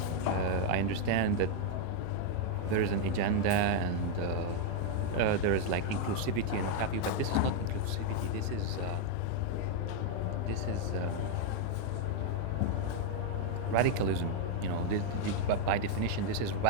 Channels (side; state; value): both; different; correlation 0.00